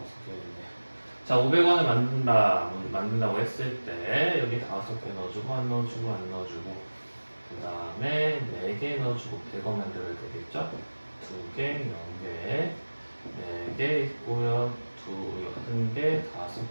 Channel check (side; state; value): both; inverted; correlation -1.00